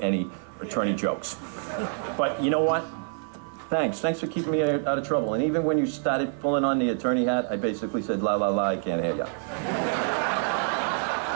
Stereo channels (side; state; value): left; silent; 60 dB below the other